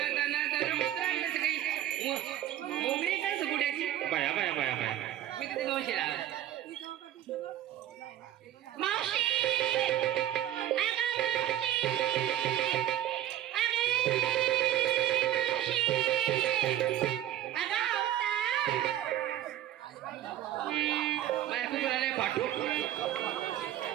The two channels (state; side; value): quieter; left; 12.5 dB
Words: मोगरी काय सुकुट्याची बाया बाया बाया बाया मी तिथे मावशी राहायचं मावशी पाठू